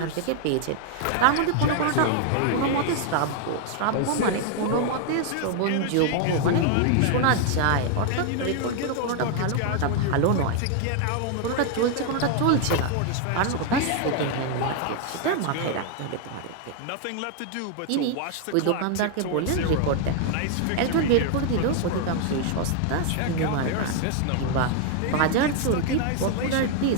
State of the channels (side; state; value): both; different; correlation 0.00